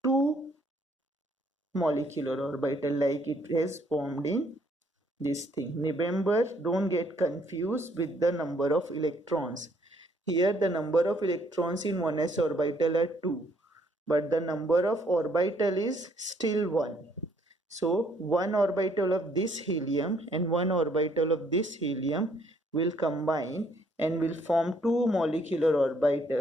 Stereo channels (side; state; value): both; normal; correlation 0.66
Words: two molecular orbital like it has formed in this thing. Remember, don't get confused with the number of electrons. Here the number of electrons in 1s orbital are 2, but the number of orbital is still 1. So one orbital of this helium and one orbital of this helium will combine and will form two molecular